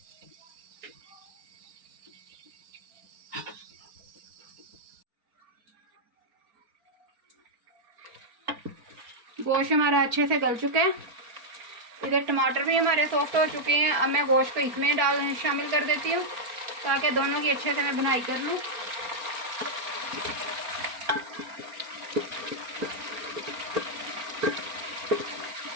गोश्त हमारा अच्छे से गल चुका है, इधर टमाटर भी हमारे सॉफ्ट हो चुके हैं। अब मैं गोश्त को इसमें शामिल कर देती हूँ ताकि दोनों की अच्छे से मैं बुनाई कर लूँ।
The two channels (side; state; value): left; late; 4.4 ms